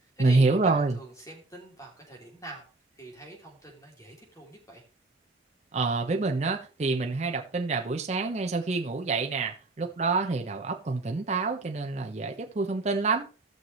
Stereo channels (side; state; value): left; quieter; 3.3 dB